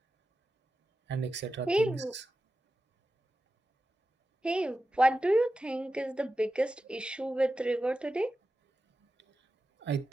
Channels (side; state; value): both; normal; correlation 0.92